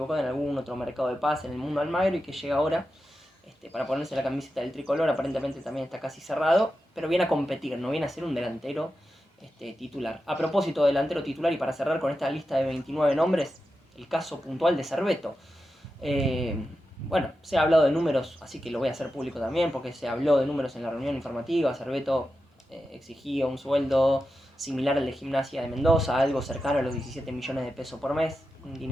en algún otro mercado de pase en el mundo Almagro, y que llega ahora para ponerse la camiseta del tricolor. Aparentemente también está casi cerrado, pero viene a competir, no viene a ser un delantero titular. A propósito de delantero titular, y para cerrar con esta lista de 29 nombres, el caso puntual de Cerveto. Bueno, se ha hablado de números, así que lo voy a hacer público también, porque se habló de números en la reunión informativa. Cerveto exigía un sueldo similar al de Gimnasia de Mendoza, algo cercano a los 17 millones de pesos por mes, un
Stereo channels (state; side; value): normal; both; correlation 0.90